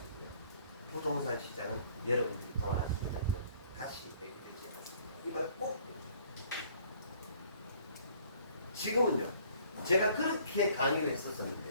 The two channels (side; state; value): both; inverted; correlation -0.57